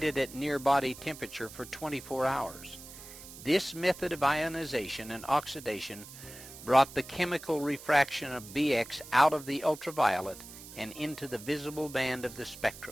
at near body temperature for 24 hours. This method of ionization and oxidation brought the chemical refraction of BX out of the ultraviolet and into the visible band of the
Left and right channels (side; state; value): right; noise; hiss, 15 dB below the sound